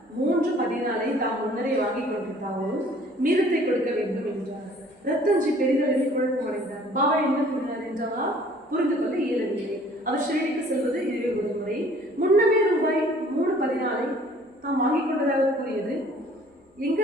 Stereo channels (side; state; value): both; normal; correlation 0.54